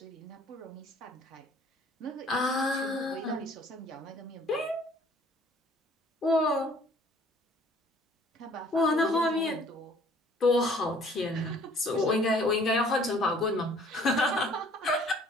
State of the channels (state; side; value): normal; both; correlation 0.56